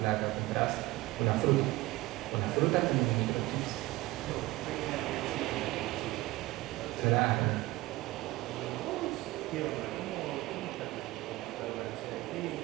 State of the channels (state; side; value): quieter; left; 19.1 dB